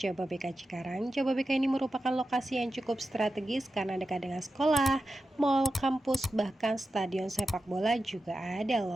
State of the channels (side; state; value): both; normal; correlation 0.91